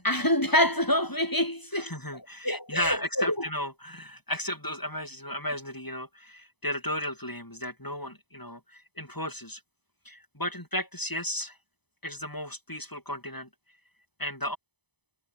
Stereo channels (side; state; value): right; late; 0.99 ms